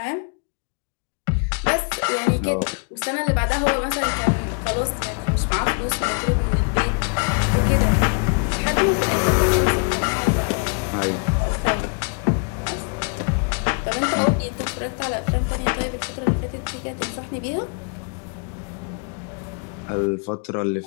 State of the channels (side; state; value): right; quieter; 36.5 dB